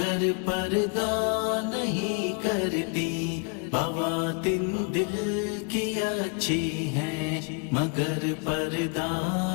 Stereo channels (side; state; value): right; quieter; 35.7 dB